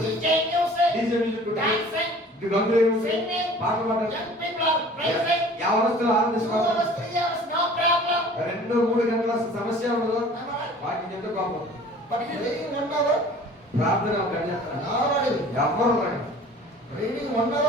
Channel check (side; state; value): both; normal; correlation 0.47